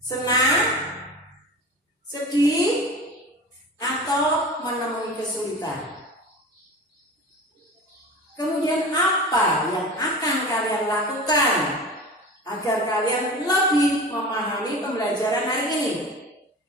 Sedih? Atau menemui kesulitan? Kemudian apa yang akan kalian lakukan agar kalian lebih memahami pembelajaran hari ini?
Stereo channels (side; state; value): both; normal; correlation 0.34